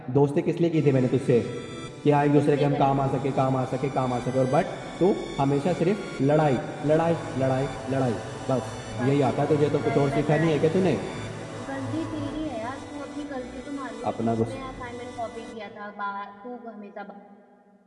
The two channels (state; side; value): identical; both; correlation 1.00